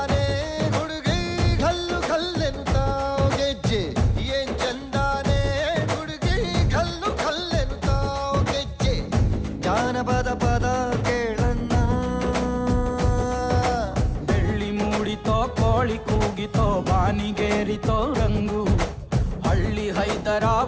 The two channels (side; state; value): both; identical; correlation 1.00